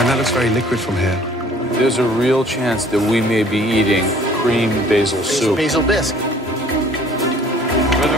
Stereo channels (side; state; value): both; normal; correlation 0.54